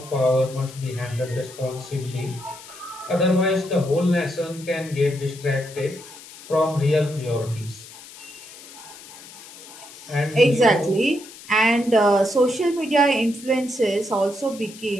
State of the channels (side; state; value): left; noise; hiss, 17 dB below the sound